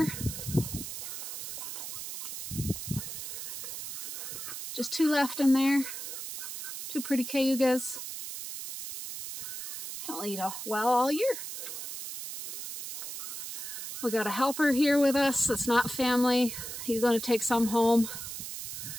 Just 2 left in there. 2 pretty cayugas. They'll eat well all year. We got a helper here with us. It's not family. He's going to take some home.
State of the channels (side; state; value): right; noise; hiss, 7 dB below the sound